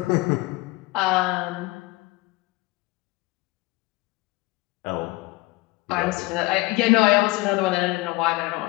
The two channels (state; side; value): quieter; right; 22.0 dB